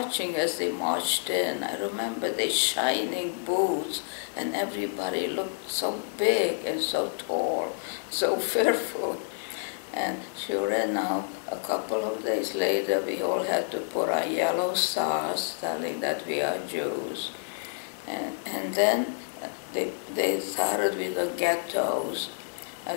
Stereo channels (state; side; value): silent; right; 59 dB below the other